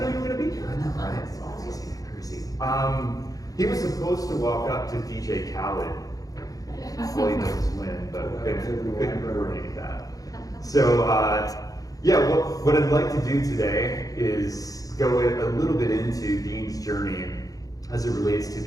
you were going to be here. I know, right? It's all crazy. He was supposed to walk up to DJ Khaled while he does his win, but couldn't coordinate that. So, what I'd like to do today is go a little bit into Dean's journey as it relates to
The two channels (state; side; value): late; right; 0.17 ms